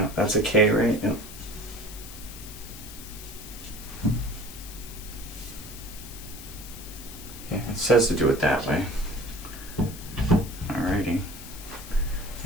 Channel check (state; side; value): noise; left; hiss, 14 dB below the sound